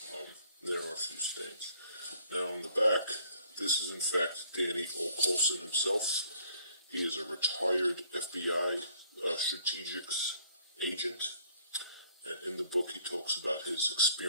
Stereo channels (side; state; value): both; inverted; correlation -0.61